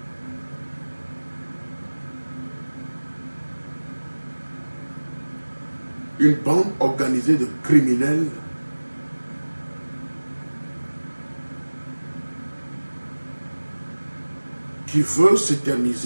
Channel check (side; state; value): both; inverted; correlation -1.00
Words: Une bande organisée de criminels qui veut